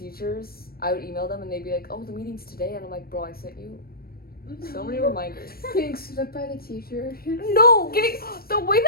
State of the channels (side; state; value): right; late; 0.44 ms